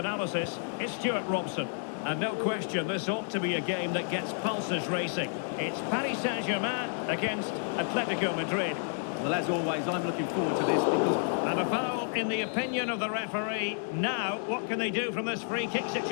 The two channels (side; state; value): right; silent; 57 dB below the other